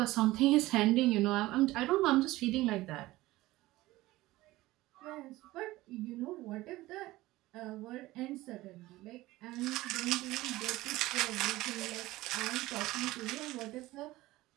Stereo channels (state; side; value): quieter; left; 18.1 dB